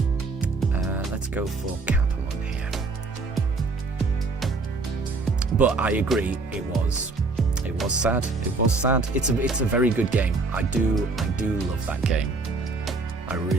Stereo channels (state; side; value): quieter; left; 3.8 dB